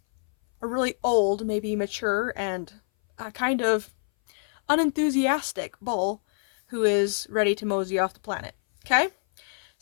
a really old, maybe mature, and kind of unenthusiastic bull who is ready to mosey off the planet. Okay?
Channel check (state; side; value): silent; right; 59 dB below the other